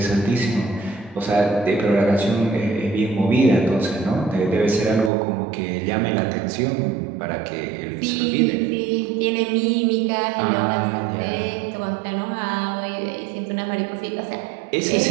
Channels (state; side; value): drops out; left; at 5.1 s